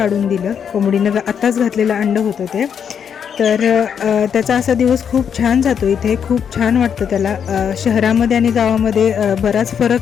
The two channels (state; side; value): quieter; right; 7.7 dB